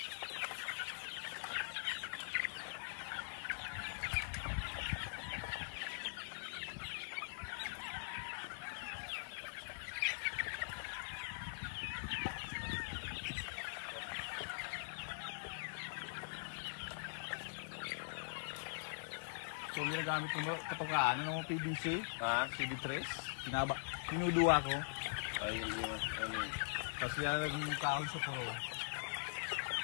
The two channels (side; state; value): right; silent; digital silence